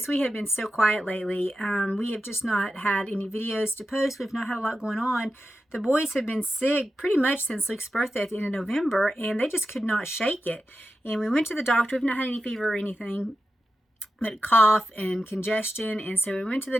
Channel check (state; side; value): normal; both; correlation 0.90